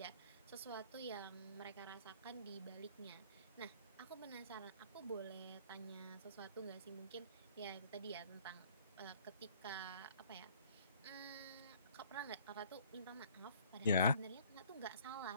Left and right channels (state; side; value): inverted; both; correlation -0.56